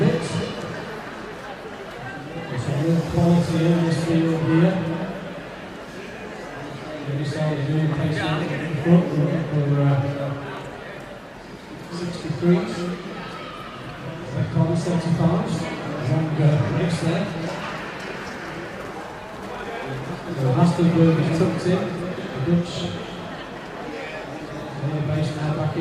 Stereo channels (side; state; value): both; identical; correlation 1.00